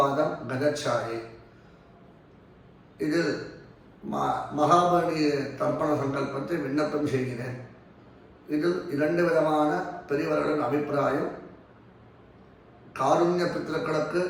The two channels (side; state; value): both; identical; correlation 1.00